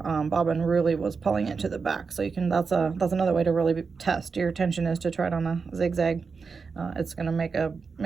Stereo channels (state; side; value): quieter; left; 5.1 dB